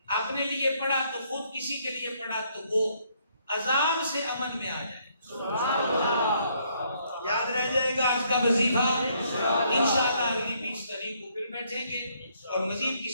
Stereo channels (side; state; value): both; inverted; correlation -0.69